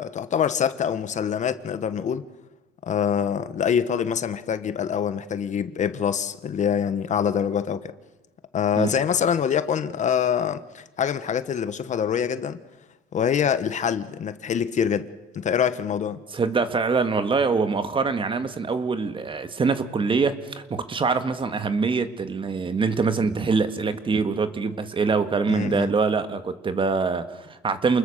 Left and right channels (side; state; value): both; normal; correlation 0.44